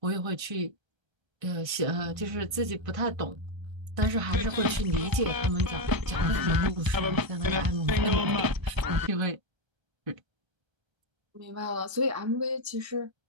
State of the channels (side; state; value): left; late; 1.3 ms